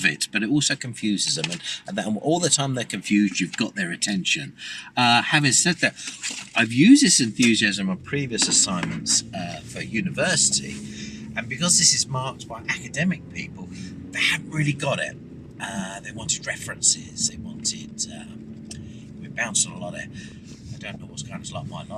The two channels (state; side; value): identical; both; correlation 1.00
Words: it, but it also confuses them. And all the time they're confused, you've got their attention. Having said that, I've used this enthusiasm on previous assignments for university. And because this is marked by academic people, they haven't really got it. They wanted references. They wanted... we bounced on a lot of... I don't know what's going on. It's like my